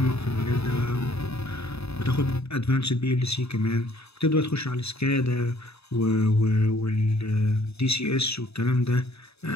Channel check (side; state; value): right; late; 0.79 ms